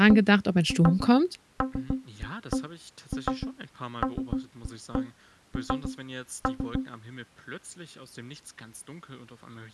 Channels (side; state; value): both; identical; correlation 1.00